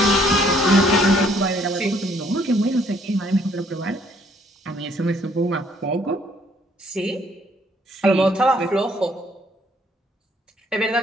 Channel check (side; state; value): both; normal; correlation 0.64